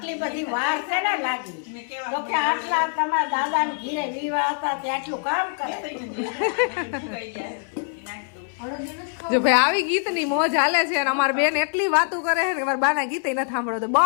બધી વાર છે ને લાગી તો કે આટલા તમારા દાદાને ઘીરે વિવાહ હતા તે આટલું કામ કરે જો ભાઈ આવી ગીતની મોજ હાલે છે અને અમારી બેન એટલી વાતો કરે છે કે મારા બાના ગીતે નથી સાંભળો તો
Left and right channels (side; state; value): right; silent; 58 dB below the other